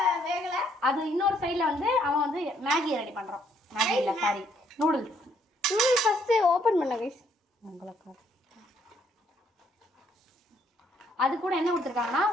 வேகல அது இன்னொரு சைடுல வந்து அவன் வந்து மேகி ரெடி பண்றான். மேகி இல்ல sorry noodles. Noodles first open பண்ணு गाइस. உங்களுக்கு அது கூட என்ன கொடுத்திருக்காங்கன்னா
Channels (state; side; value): normal; both; correlation 0.68